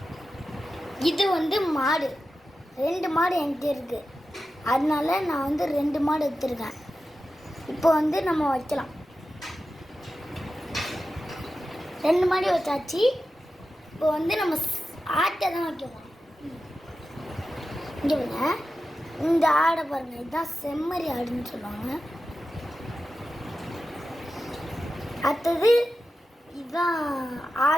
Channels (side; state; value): both; normal; correlation 0.92